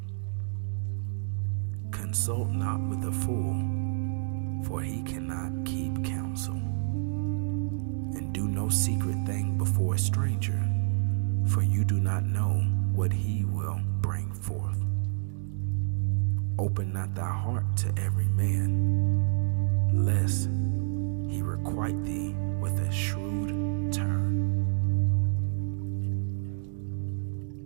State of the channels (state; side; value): silent; left; 59 dB below the other